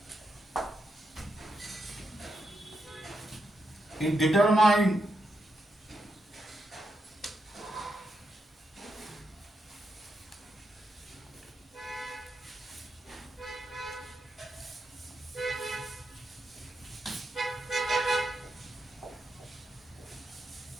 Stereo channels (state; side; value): normal; both; correlation 0.83